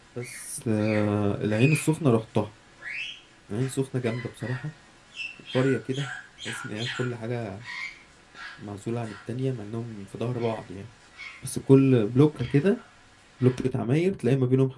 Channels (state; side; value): identical; both; correlation 1.00